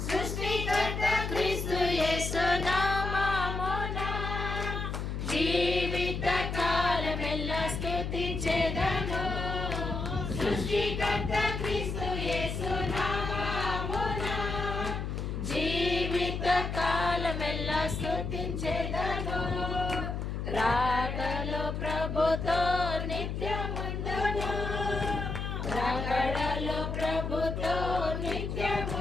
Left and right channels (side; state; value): left; noise; hum, 3 dB below the sound